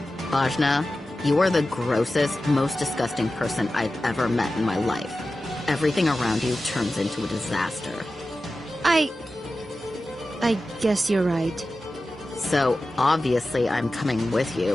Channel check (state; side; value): normal; both; correlation 0.94